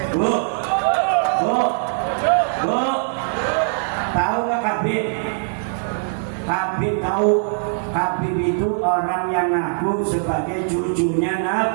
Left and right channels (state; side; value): silent; left; digital silence